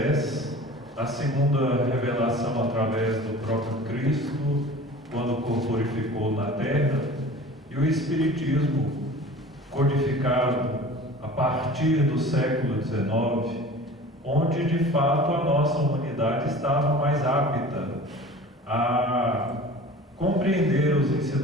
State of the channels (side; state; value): both; normal; correlation 0.41